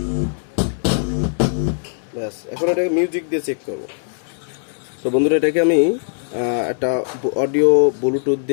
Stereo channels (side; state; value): right; silent; 64 dB below the other